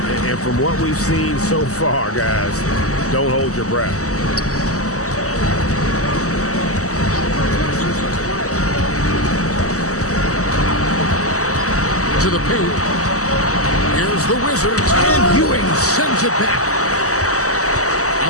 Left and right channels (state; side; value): late; right; 0.66 ms